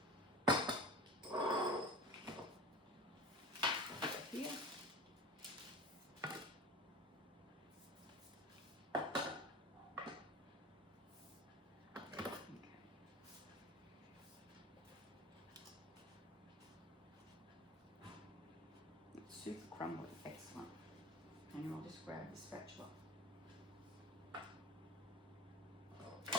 Here. Okay. It's super crumbly, excellent. And I'll just grab the spatula.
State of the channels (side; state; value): both; normal; correlation 0.35